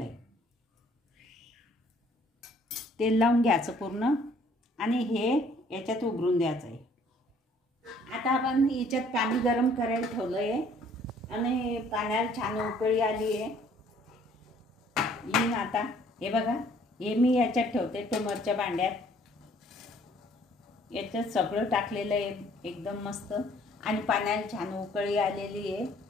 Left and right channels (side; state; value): both; normal; correlation 0.59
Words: आहे. तेल लावून घ्यायचं पूर्ण आणि हे याच्यात उघडून द्यायचं आहे. आता आपण याच्यात पाणी गरम करायला ठेवलं आहे आणि पाण्याला छान उकळी आली आहे. आता हे बघा, हे मी याच्यात ठेवते ट्युमरच्या भांड्यात. याच्यात सगळं टाकलेलं आहे एकदम मस्त आणि पाण्याला छान उकळी आलेली आहे.